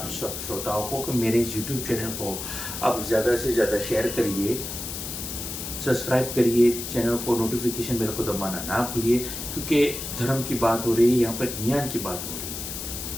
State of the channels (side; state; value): left; noise; hiss, 6 dB below the sound